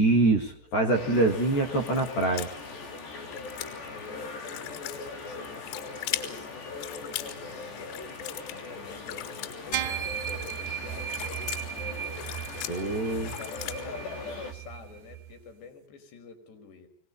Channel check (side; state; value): right; late; 14 ms